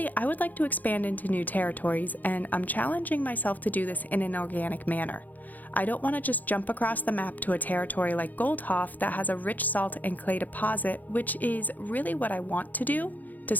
I would like to expand into new territories, and I'm challenging myself to do this in an organic manner. I don't want to just jump across the map to a territory like Goldhoff that has a rich salt and clay deposit, which is really what I want to do, to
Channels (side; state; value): right; late; 0.082 ms